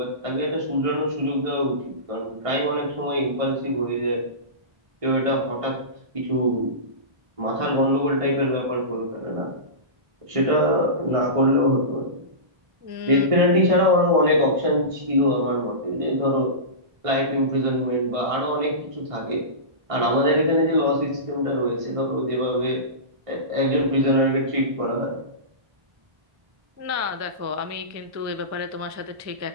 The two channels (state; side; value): late; left; 1.5 ms